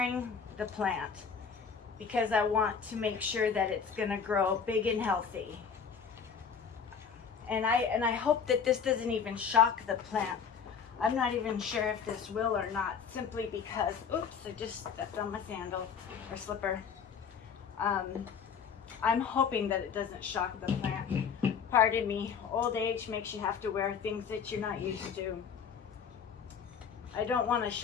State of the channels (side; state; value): right; quieter; 6.5 dB